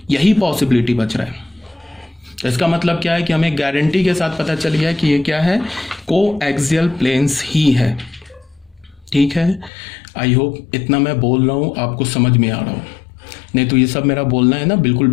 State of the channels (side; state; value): right; drops out; at 9.7 s